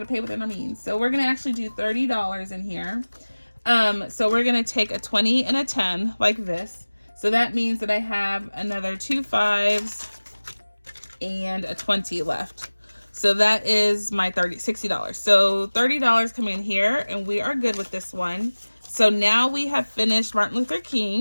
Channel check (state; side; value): inverted; both; correlation -1.00